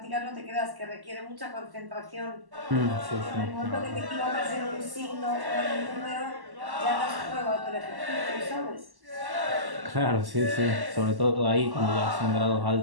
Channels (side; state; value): left; late; 1.1 ms